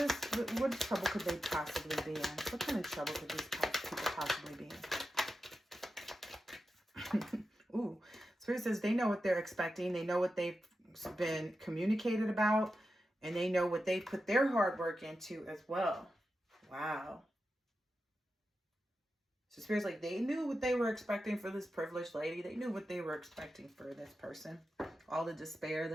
trouble could they possibly be in? What kind of trouble could these people possibly be in? Ooh, Spirit says they know what they're expecting. They know what they've been communicated about. And they know what they put their hard work into as well. Wow. So Spirit's like, they knew what they were expecting for this privileged lady. They knew what they were expecting for this person. All the despair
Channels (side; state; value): both; normal; correlation 0.90